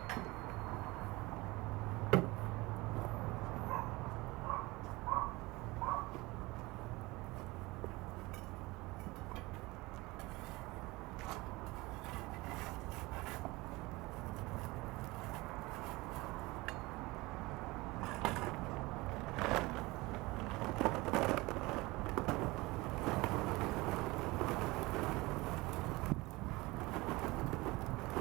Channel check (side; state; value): left; quieter; 22.0 dB